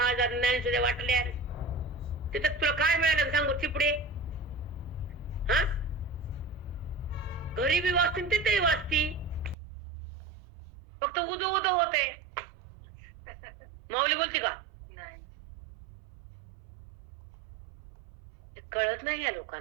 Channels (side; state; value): left; drops out; at 9.6 s